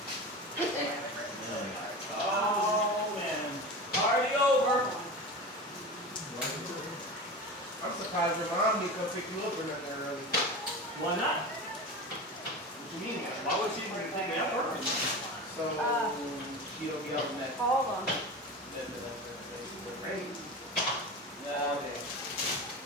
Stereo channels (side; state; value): both; normal; correlation 0.29